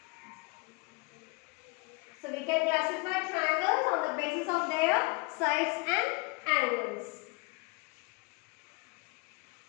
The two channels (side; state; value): right; quieter; 28.4 dB